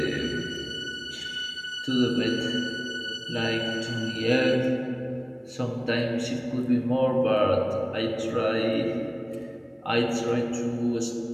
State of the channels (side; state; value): both; identical; correlation 1.00